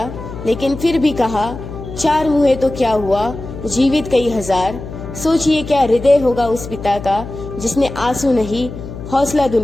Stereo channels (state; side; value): noise; left; hum, 11 dB below the sound